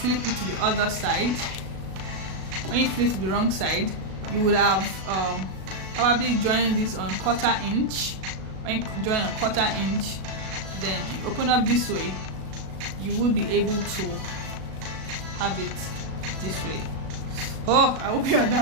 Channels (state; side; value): late; left; 37 ms